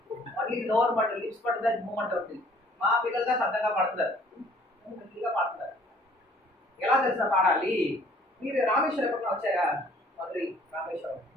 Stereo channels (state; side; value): normal; both; correlation 0.57